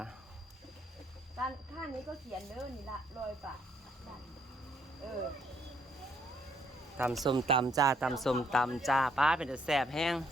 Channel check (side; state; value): both; normal; correlation 0.69